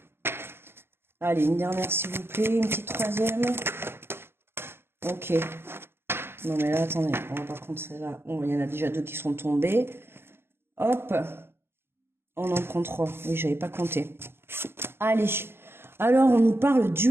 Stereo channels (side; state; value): left; late; 0.11 ms